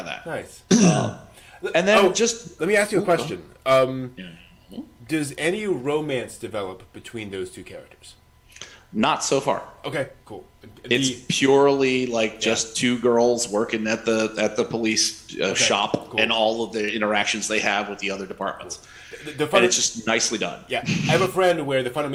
that. Nice. And then let me ask you a question. Does any romance develop between those two characters? Not so far. Okay, cool. It's purely like just two girls working at the police shop, and all of the interactions they have with the other departments. And it's just nicely done. Yeah, I have a friend where the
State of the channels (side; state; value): both; identical; correlation 1.00